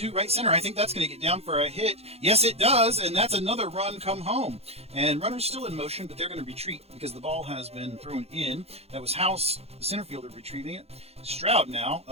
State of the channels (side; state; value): left; late; 0.29 ms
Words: right center. I think that's going to get down for a hit. Yes, it does, and that's another run come home. And runners still in motion, but they're going to retreat because the ball has been thrown in. That was House, the center fielder, retrieving it. Stroud now